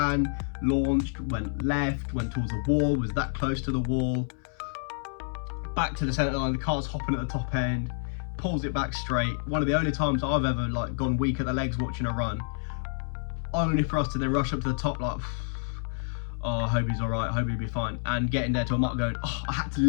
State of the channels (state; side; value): silent; right; 59 dB below the other